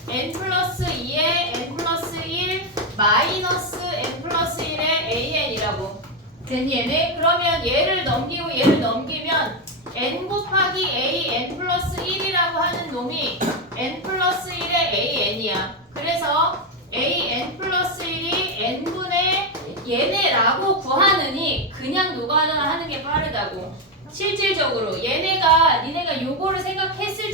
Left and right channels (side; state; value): both; normal; correlation 0.07